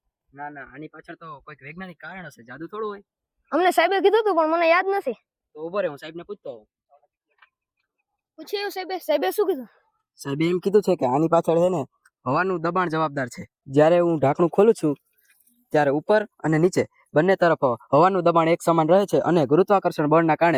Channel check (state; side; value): identical; both; correlation 1.00